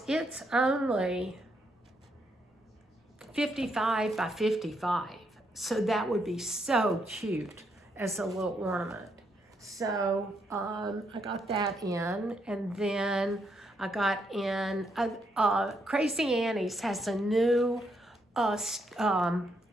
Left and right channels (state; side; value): normal; both; correlation 0.77